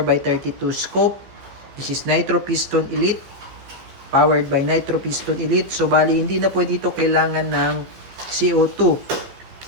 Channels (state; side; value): late; left; 15 ms